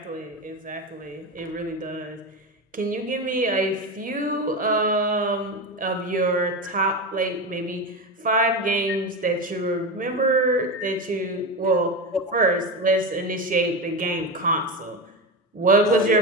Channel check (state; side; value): normal; both; correlation 0.19